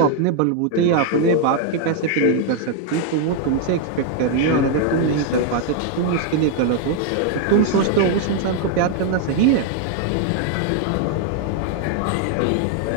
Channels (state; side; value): different; both; correlation 0.00